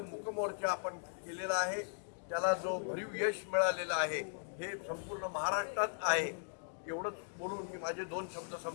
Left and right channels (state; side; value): silent; right; digital silence